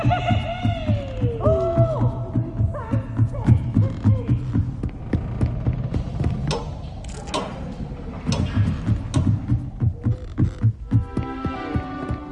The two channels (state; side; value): identical; both; correlation 1.00